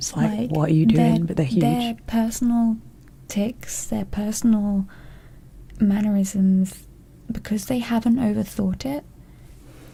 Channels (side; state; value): both; identical; correlation 1.00